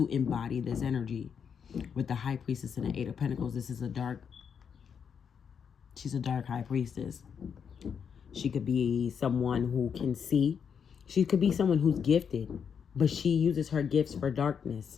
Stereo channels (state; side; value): quieter; right; 7.1 dB